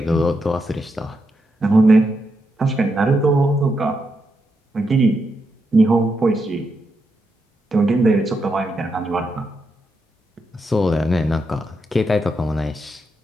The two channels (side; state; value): both; normal; correlation 0.83